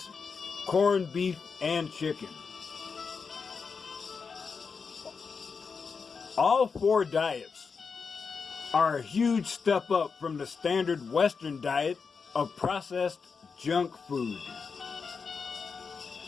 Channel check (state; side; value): quieter; right; 5.4 dB